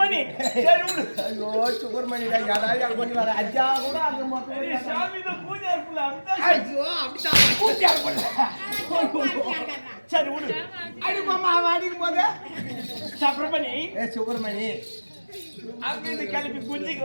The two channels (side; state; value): both; inverted; correlation -1.00